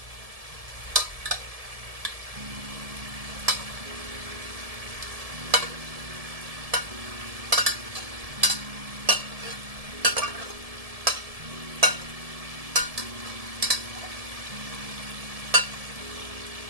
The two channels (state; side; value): late; left; 1.7 ms